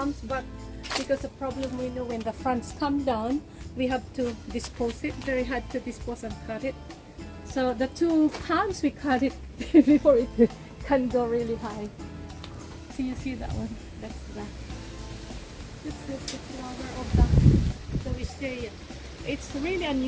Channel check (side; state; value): both; identical; correlation 1.00